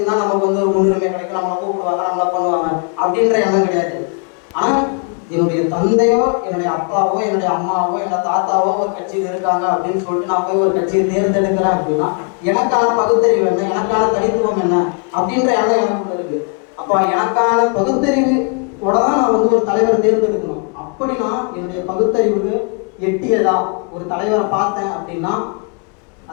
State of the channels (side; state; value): right; quieter; 39.5 dB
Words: நமக்கு ஒரு முன்னுரிமை கிடைக்கும், நம்மளை கூப்பிடுவாங்க, நம்மளை பண்ணுவாங்க அப்படின்ற எண்ணம் கிடையாது. ஆனால் என்னுடைய தந்தையோ என்னுடைய அப்பாவோ என்னுடைய அம்மாவோ என்னோட தாத்தாவோ ஒரு கட்சியில் இருக்காங்க அப்படின்னு சொல்லிட்டு நான் போய் ஒரு கட்சியை தேர்ந்தெடுக்கிறேன் அப்படின்னா எனக்கான பகுத்தறிவு என்ன, எனக்கான தனித்துவம் என்ன அப்படின்ற எண்ணம் எனக்குள்ள இருக்கு. அப்போ எனக்கான பகுத்தறிவோட தான் நான் ஒரு தலைவரை தேர்ந்தெடுக்கணும். அப்படி நான் என்னுடைய பகுத்தறிவுக்கு எட்டியதா ஒரு தலைவரை பார்த்தேன் அப்படின்னா